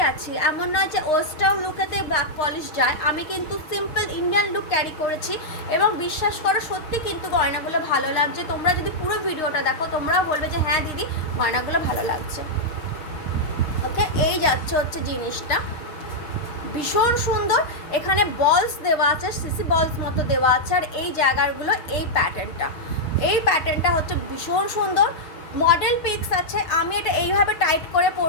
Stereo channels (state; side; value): late; right; 6.5 ms